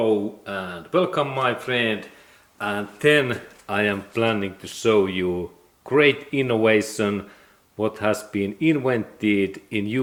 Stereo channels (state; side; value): identical; both; correlation 1.00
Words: and welcome my friend, and then I am planning to show you great innovation what has been invented in